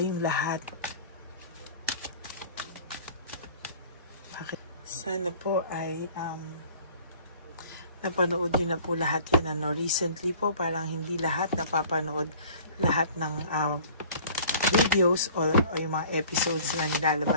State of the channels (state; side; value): inverted; both; correlation -0.48